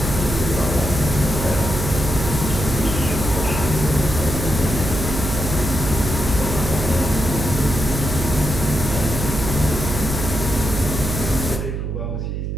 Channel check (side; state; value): right; noise; hum, 3 dB below the sound